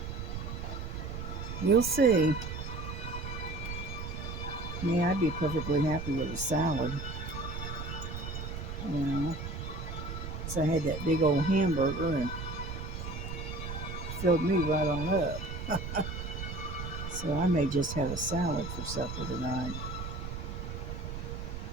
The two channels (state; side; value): noise; right; rumble, 6 dB below the sound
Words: we'll see. Yeah, I'd be perfectly happy with a salad. You know, so I had that big old hamburger and filled me right on up. So I may just have a salad for supper tonight.